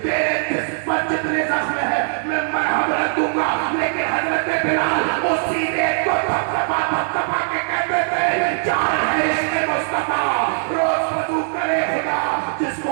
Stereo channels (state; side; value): silent; left; digital silence